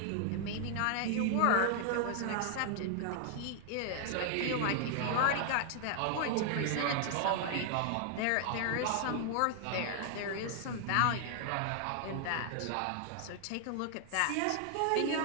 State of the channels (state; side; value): different; both; correlation 0.00